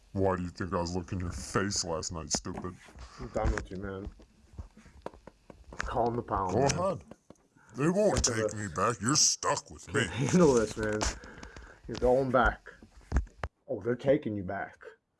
Why do you think I was licking your face last night, stupid? I'm done with you, man. Calm the pound. Go man. ahead. They won't take me back. You're stuck with me. Handle this, man. You're going back. Oh, they're taking you back.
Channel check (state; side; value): identical; both; correlation 1.00